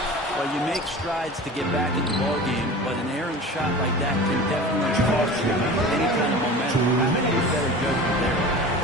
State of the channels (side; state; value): both; normal; correlation 0.36